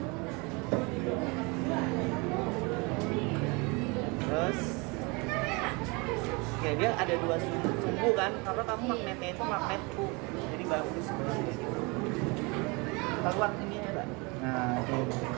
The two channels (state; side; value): quieter; left; 28.2 dB